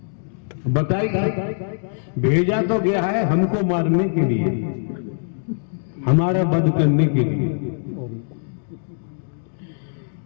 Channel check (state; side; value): silent; right; digital silence